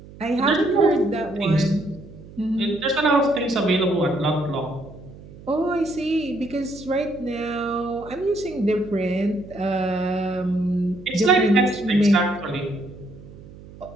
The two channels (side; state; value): right; noise; hum, 18 dB below the sound